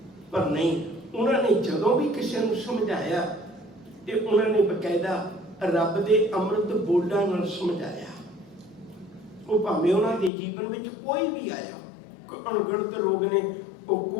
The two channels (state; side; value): drops out; right; at 10.3 s